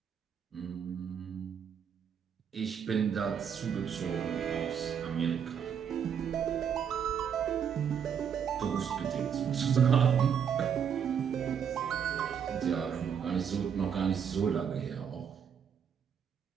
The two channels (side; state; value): left; quieter; 7.8 dB